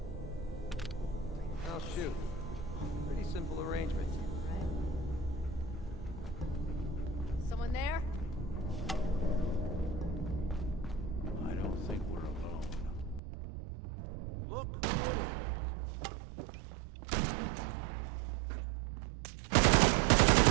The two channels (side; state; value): left; drops out; at 13.2 s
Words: Oh, shoot. Pretty simple arrangement. Someone there? I don't think we're alone. Look.